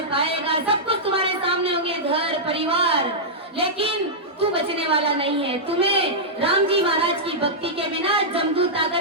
पाएगा। सब कुछ तुम्हारे सामने होंगे, घर परिवार, लेकिन तू बचने वाला नहीं है। तुम्हें राम जी महाराज की भक्ति के बिना जमदूत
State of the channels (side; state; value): both; normal; correlation -0.10